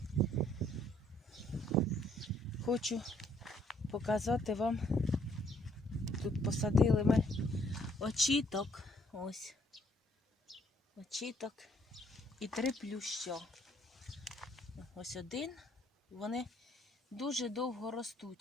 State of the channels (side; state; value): both; normal; correlation 0.66